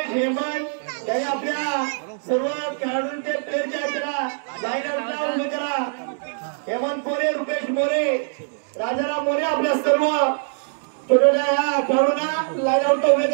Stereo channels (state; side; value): silent; left; digital silence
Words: हेमंत यांनी आपल्या सर्व खेळाडूंचे प्लेयरच्या त्याला लाईन आउटला उभे करा। हेमंत मोरे, रुपेश मोरे, राजाराम मोरे आपल्या सर्व छोट्या या खेळाडूंना लाईन आउटला उभे